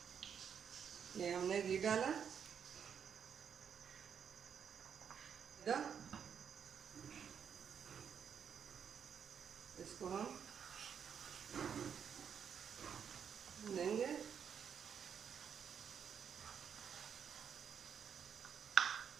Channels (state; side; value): quieter; left; 7.6 dB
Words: ये हमने घी डाला। इसको हम लेंगे।